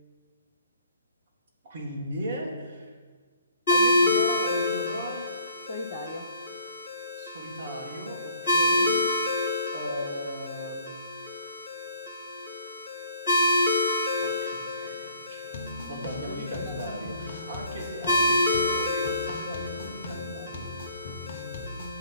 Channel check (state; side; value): inverted; both; correlation -0.59